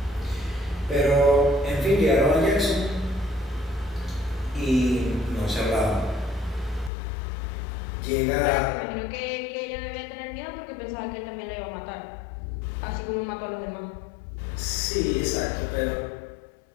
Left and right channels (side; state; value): right; drops out; at 6.9 s